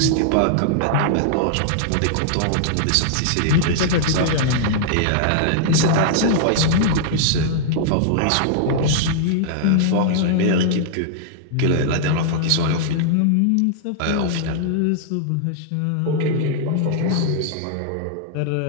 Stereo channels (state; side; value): different; both; correlation -0.01